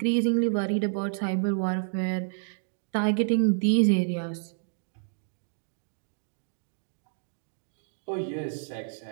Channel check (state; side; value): silent; left; digital silence